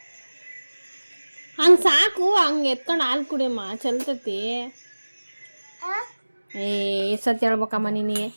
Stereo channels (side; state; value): both; inverted; correlation -1.00